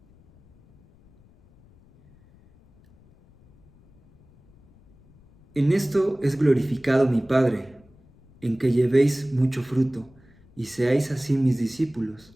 En esto es glorificado mi Padre, en que llevéis mucho fruto y seáis así mis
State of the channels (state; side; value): noise; left; rumble, 29 dB below the sound